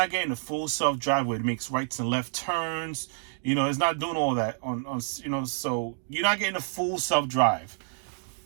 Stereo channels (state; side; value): silent; left; digital silence